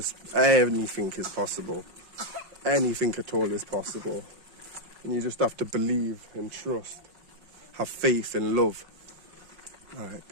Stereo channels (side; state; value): left; late; 5.4 ms